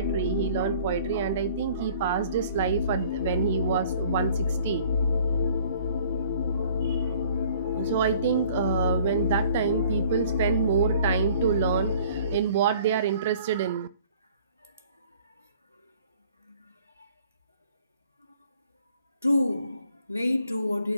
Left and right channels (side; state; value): both; inverted; correlation -0.55